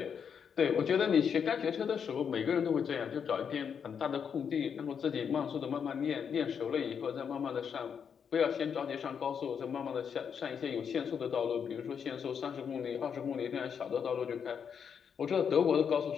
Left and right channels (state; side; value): quieter; right; 7.2 dB